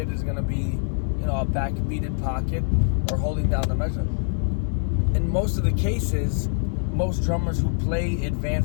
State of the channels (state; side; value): silent; right; 62 dB below the other